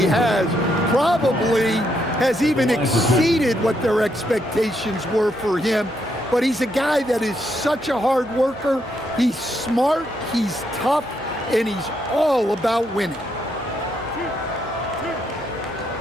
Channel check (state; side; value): normal; both; correlation 0.77